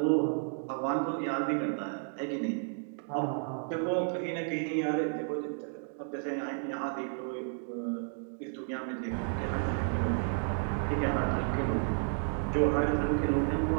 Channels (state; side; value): silent; left; digital silence